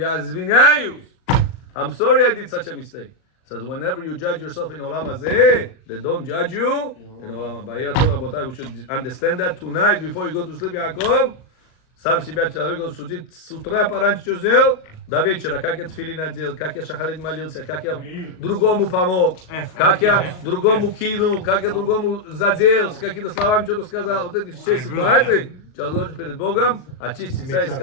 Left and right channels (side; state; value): right; late; 38 ms